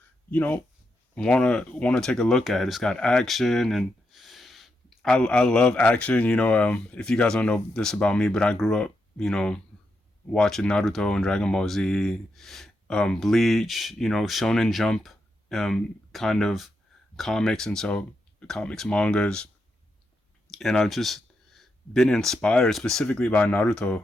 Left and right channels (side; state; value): both; normal; correlation 0.84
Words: you know want to take a look at. It's got action, and I love action. If you guys don't know this about me, but I grew up watching Naruto and Dragon Ball Z, Bleach, Shonen Jump, kind of comics, and so comics, mangas, and I've just been inspired specifically by